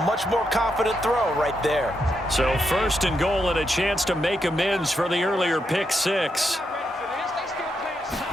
much more confident throw right there. So 1st and goal and a chance to make amends for the earlier pick 6.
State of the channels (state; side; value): normal; both; correlation 0.82